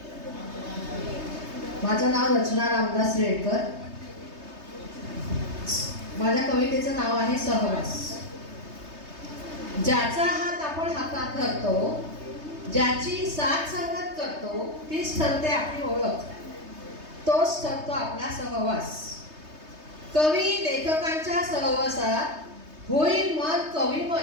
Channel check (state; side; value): late; left; 3.2 ms